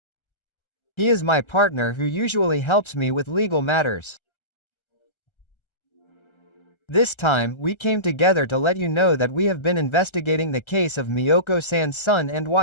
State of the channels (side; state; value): right; late; 1.3 ms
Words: He is my partner who usually helps me with legal matters. This time, we came together to let you know that we have been investigating the case of Miyoko-san's son and